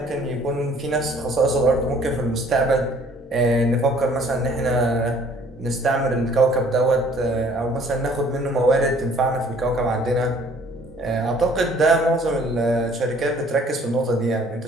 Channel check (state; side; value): normal; both; correlation 0.57